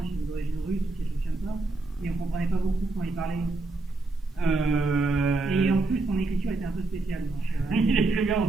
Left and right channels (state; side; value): quieter; left; 3.2 dB